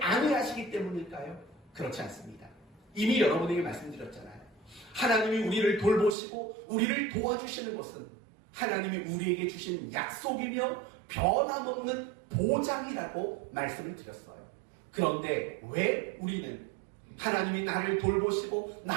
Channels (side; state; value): left; drops out; at 6.2 s